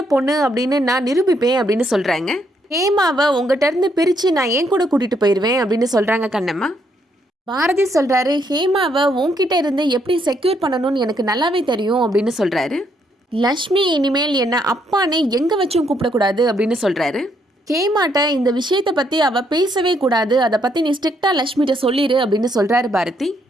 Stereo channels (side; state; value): both; normal; correlation 0.73